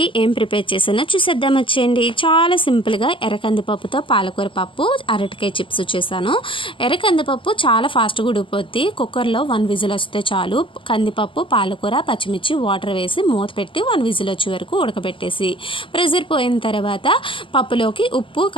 ఏం ప్రిపేర్ చేసానో చూసేద్దాం వచ్చేయండి. చాలా సింపుల్గా ఎర్రకందిపప్పుతో పాలకూర పప్పు, అరటికాయ చిప్స్ చేశాను. ఎర్రకందిపప్పు చాలా ఫాస్ట్గా ఉడికిపోద్ది. కుక్కర్లో 1 విజిల్ వస్తే చాలు. కందిపప్పు, పాలకూర, పచ్చిమిర్చి, వాటర్ వేసి మూత పెట్టి 1 విజిల్ వచ్చే వరకు ఉడకబెట్టేసి ప్రెజర్ పోయిన తర్వాత పప్పులోకి ఉప్పు,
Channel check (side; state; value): right; late; 0.25 ms